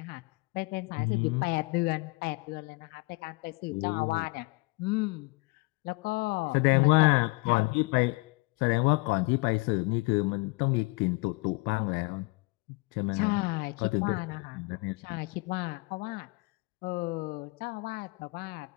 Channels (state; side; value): quieter; right; 27.8 dB